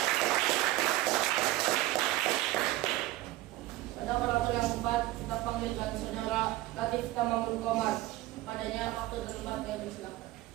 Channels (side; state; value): left; quieter; 17.1 dB